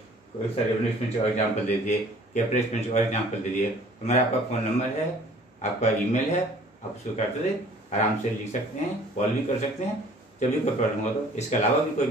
कोई सा रेवेन्यू एक्सपेंडिचर और एग्जाम्पल दे दिए, कैपिटल एक्सपेंडिचर और एग्जाम्पल दे दिए, तो मेरा आपका फोन नंबर है, आपका ईमेल है, आप उसको करते आराम से लिख सकते हैं, कॉल भी कर सकते हैं जब भी कोई प्रॉब्लम हो। तो इसके अलावा भी कोई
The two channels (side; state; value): both; normal; correlation 0.52